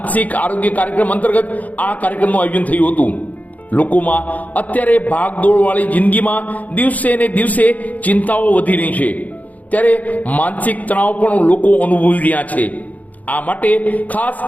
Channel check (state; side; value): late; right; 0.076 ms